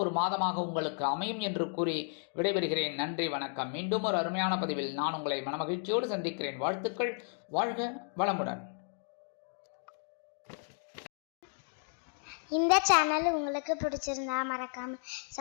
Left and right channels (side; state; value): right; silent; 55 dB below the other